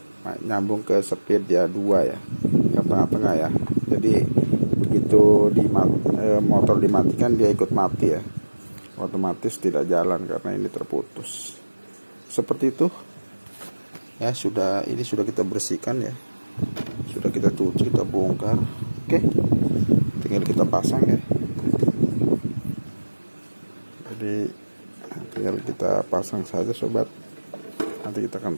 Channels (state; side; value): inverted; both; correlation -1.00